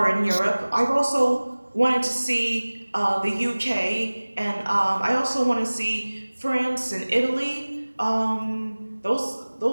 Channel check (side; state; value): both; inverted; correlation -1.00